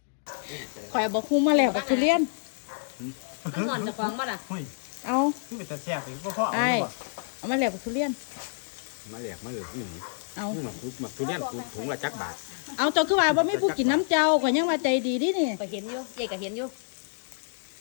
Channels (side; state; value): right; silent; digital silence